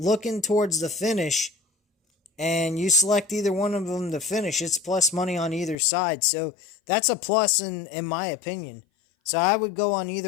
towards the finish and you select either one of them to finish, it's plus money on either side. So that's a plus in my opinion. So I would go on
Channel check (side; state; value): right; drops out; at 5.8 s